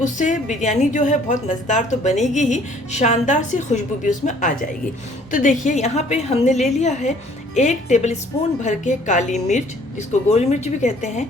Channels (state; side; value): normal; both; correlation 0.58